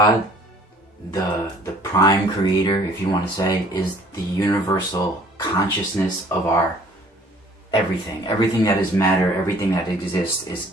the prime creator, if you want to say, is the universal consciousness of our everything. Everything that is matter, everything that exists is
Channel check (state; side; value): normal; both; correlation 0.55